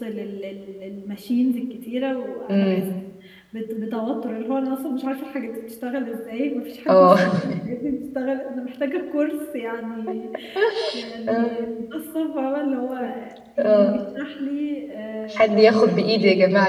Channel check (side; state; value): both; identical; correlation 1.00